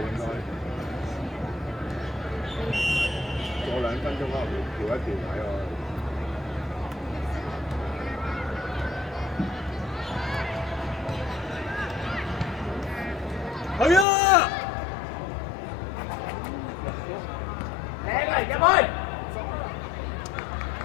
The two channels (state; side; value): drops out; right; at 14.1 s